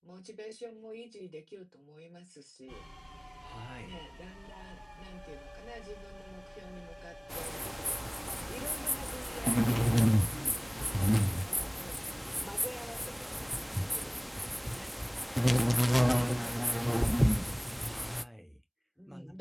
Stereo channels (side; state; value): both; identical; correlation 1.00